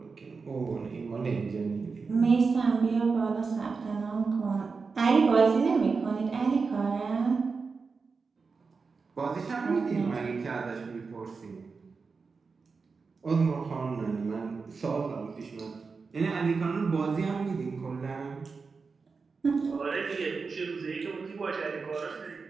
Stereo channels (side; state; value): left; quieter; 4.7 dB